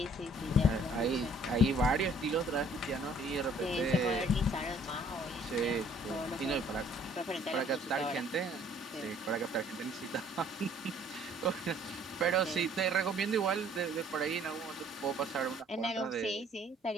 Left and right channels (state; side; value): normal; both; correlation 0.58